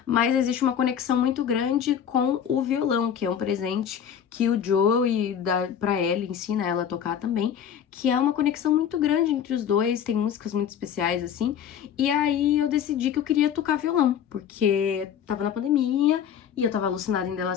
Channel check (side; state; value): right; quieter; 8.6 dB